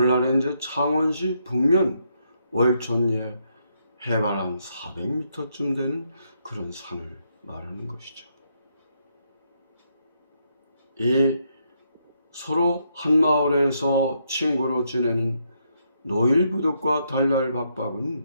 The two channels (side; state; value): both; inverted; correlation -0.77